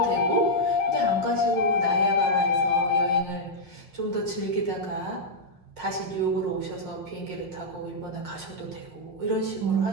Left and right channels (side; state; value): right; late; 5.5 ms